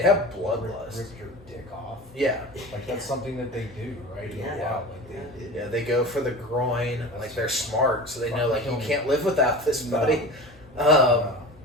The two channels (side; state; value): both; normal; correlation 0.34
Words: have bloodlust. Rip your dick off. Yeah, like that's something that they do, right? Yeah, they go for the groin. Like they're smart, so they know like you can't live without this, buddy. And